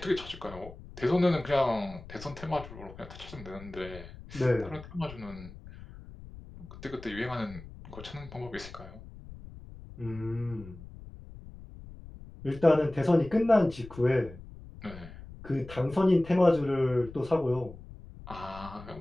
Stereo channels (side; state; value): left; noise; rumble, 16 dB below the sound